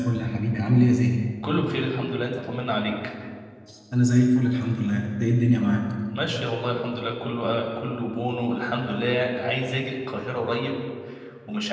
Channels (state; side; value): identical; both; correlation 1.00